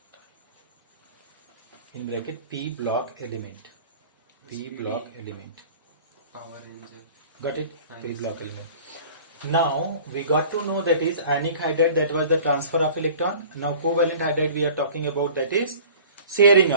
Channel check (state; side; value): inverted; both; correlation -0.45